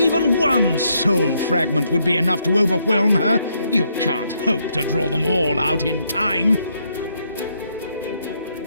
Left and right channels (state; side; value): inverted; both; correlation -0.75